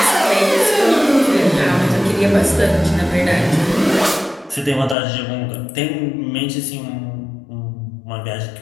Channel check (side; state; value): right; drops out; at 5.0 s